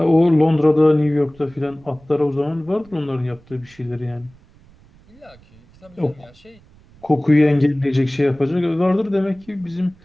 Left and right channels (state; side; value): noise; right; rumble, 27 dB below the sound